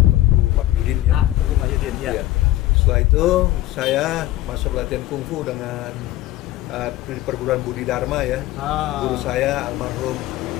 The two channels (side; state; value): right; quieter; 15.5 dB